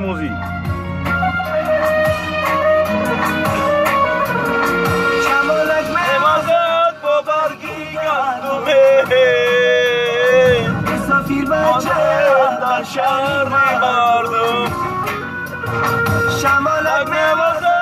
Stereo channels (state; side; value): identical; both; correlation 1.00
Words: شمالک میوازد با برگی گندمه مسافیر بچه در شهر مردم. شمالک میوازد